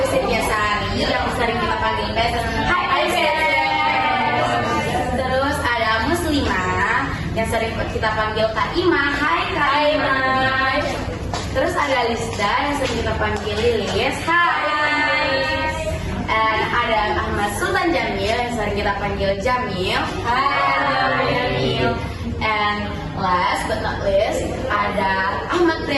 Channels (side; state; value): both; identical; correlation 1.00